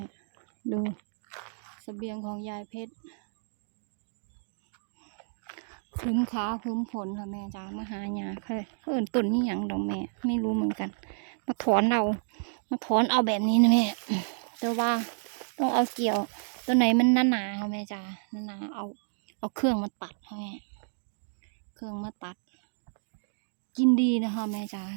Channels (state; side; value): silent; left; 58 dB below the other